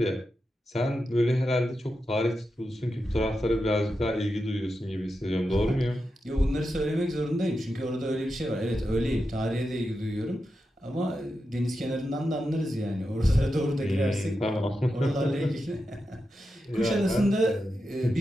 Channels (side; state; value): both; normal; correlation 0.89